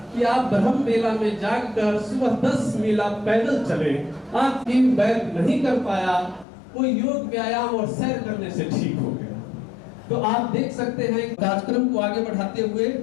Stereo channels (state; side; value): drops out; right; at 6.5 s